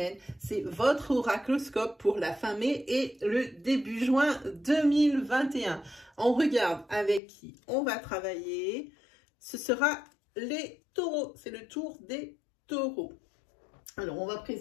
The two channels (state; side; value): drops out; right; at 7.2 s